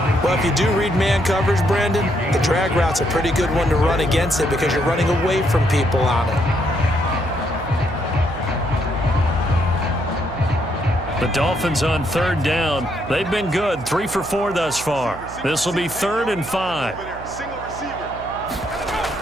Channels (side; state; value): right; noise; hum, 14 dB below the sound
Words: Well, if you do read man coverage, Brandon, the drag route's a pretty good one to run against it because you're running away from people on it. The Dolphins on 3rd down. They've been good, 3 for 4 thus far. This will be 3rd and 5.